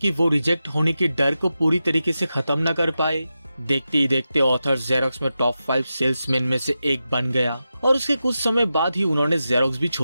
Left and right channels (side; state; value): both; inverted; correlation -0.91